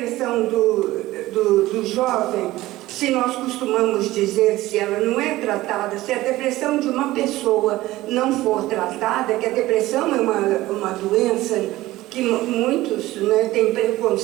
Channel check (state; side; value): quieter; left; 17.1 dB